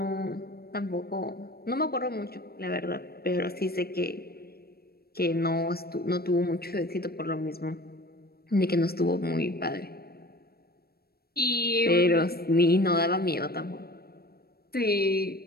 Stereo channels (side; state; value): right; late; 0.45 ms